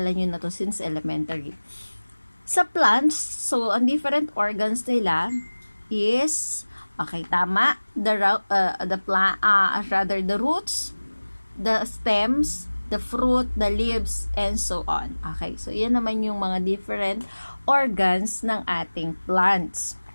nyo na to since elementary. Sa plants, so, ang different organs nila is, okay, tama, the roots, the stems, the fruit, the leaves, and so on. Okay, so yan naman yung mga different organs ng ating plants.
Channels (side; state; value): both; inverted; correlation -1.00